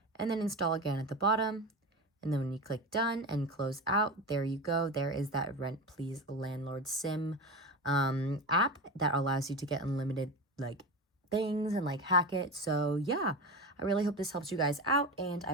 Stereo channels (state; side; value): normal; both; correlation 0.24